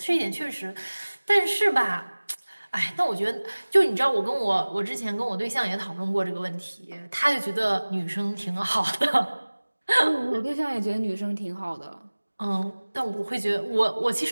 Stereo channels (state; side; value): inverted; both; correlation -1.00